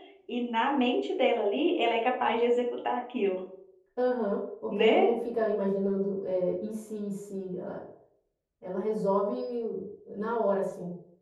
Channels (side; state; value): both; identical; correlation 1.00